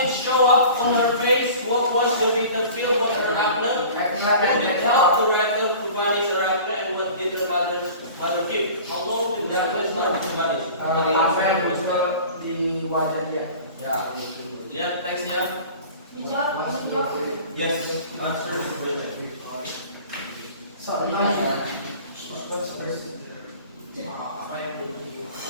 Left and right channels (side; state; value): both; inverted; correlation -0.42